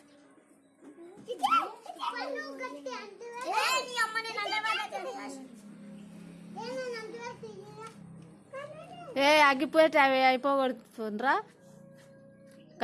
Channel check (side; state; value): both; identical; correlation 1.00